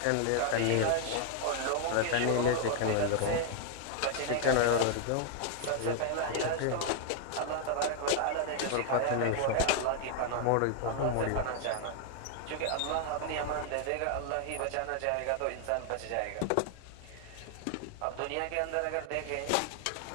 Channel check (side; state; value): both; different; correlation 0.00